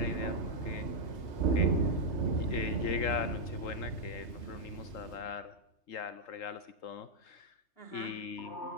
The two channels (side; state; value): right; late; 3.3 ms